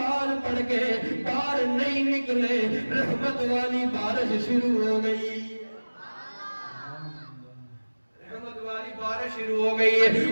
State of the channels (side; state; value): both; inverted; correlation -1.00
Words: پڑھ کے باہر نہیں نکلے رحمت والی بارش شروع ہو گئی. بارش شروع ہو گئی ہے